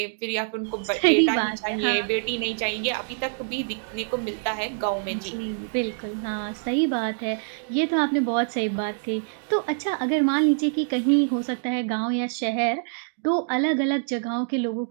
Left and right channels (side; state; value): left; silent; digital silence